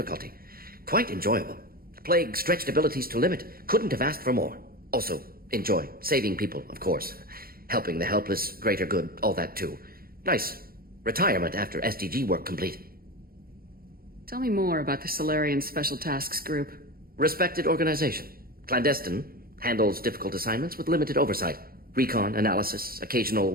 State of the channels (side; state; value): left; late; 0.43 ms